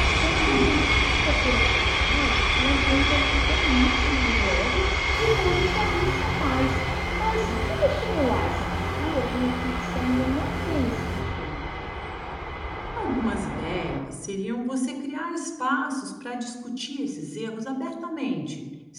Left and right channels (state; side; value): identical; both; correlation 1.00